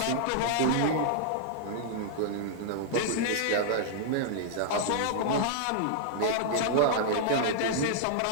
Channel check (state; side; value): different; both; correlation -0.01